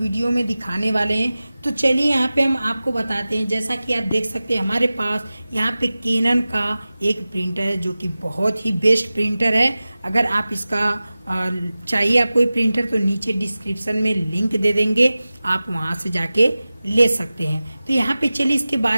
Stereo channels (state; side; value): inverted; both; correlation -0.96